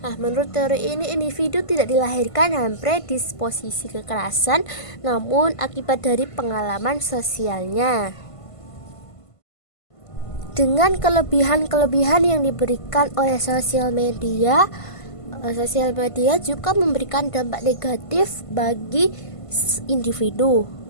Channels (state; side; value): late; right; 1.5 ms